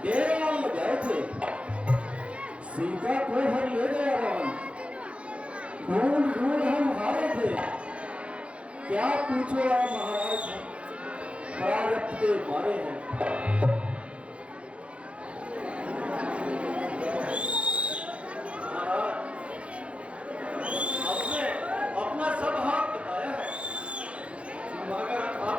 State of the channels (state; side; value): late; left; 0.061 ms